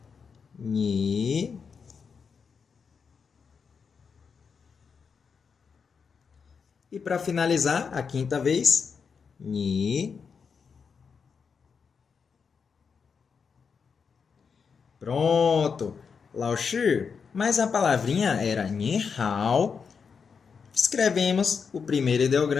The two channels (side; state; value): right; quieter; 5.9 dB